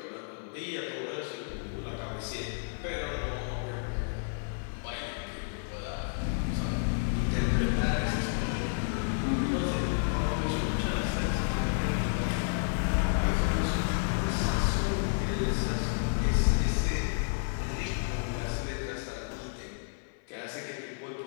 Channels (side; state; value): right; silent; 55 dB below the other